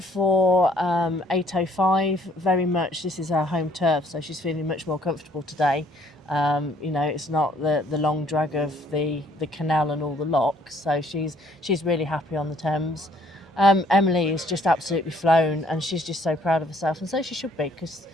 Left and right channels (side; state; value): both; normal; correlation 0.62